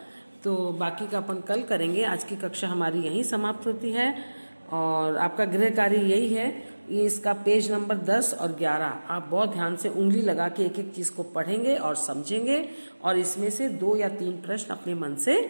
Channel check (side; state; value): both; inverted; correlation -1.00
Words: तो बाकी का अपन कल करेंगे। आज की कक्षा हमारी यहीं समाप्त होती है। और आपका गृह कार्य यही है, ये इसका पेज नंबर 10 और 11 आप बहुत ध्यान से उंगली लगा के एक एक चीज़ को पढ़ेंगे और समझेंगे, और इसमें से 2 या 3 प्रश्न अपने मन से